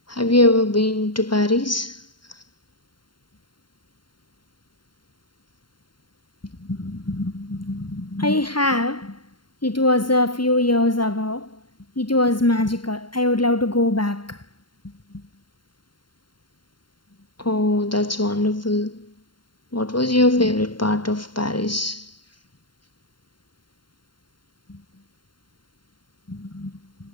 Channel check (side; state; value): right; late; 0.72 ms